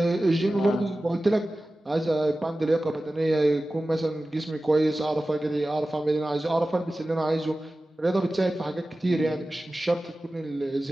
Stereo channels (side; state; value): both; normal; correlation 0.95